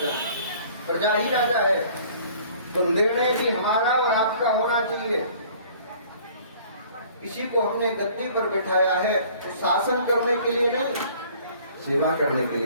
हैं। प्रजा ही राजा है, तो निर्णय भी हमारा और आपका होना चाहिए। किसी को हमने गद्दी पर बिठाया है तो शासन करने के लिए नहीं, सेवा करने के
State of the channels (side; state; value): both; inverted; correlation -0.53